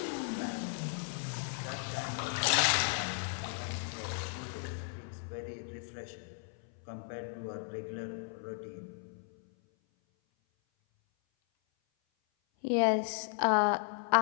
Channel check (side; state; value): right; silent; 54 dB below the other